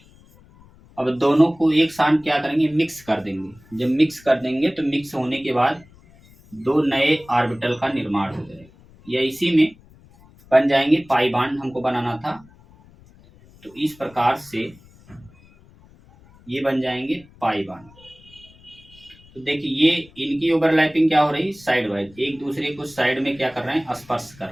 अब दोनों को एक साथ क्या करेंगे, मिक्स कर देंगे। जब मिक्स कर देंगे तो मिक्स होने के बाद दो नए ऑर्बिटल का निर्माण हो जाएगा, या इसी में बन जाएंगे पाई बॉन्ड हमको बनाना था। तो इस प्रकार से ये बन जाएंगे पाई बॉन्ड। तो देखिए ये इनकी ओवरलैपिंग क्या हो रही, साइड वाइज, एक दूसरे को साइड में क्या कर रहे हैं, स्पर्श कर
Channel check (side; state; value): left; noise; rumble, 26 dB below the sound